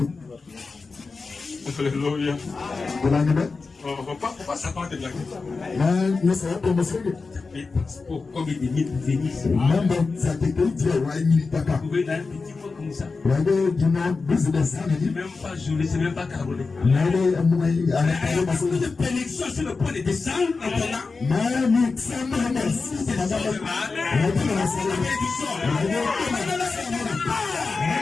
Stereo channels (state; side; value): quieter; right; 4.2 dB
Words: Alléluia. On ne va pas s'attendre de blaguer. Comme il est venu venir ici. Vous pouvez dans un petit mot comme ça. C'est même pas Jolie, c'est même pas Caroline. Il y a beaucoup de bénédictions sur le point de descendre en ton âme.